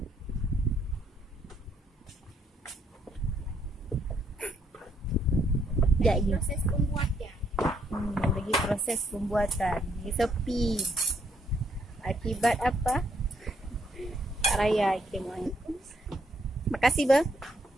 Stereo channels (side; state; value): both; normal; correlation 0.72